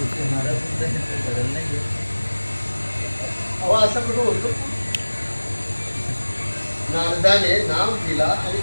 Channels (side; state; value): both; inverted; correlation -1.00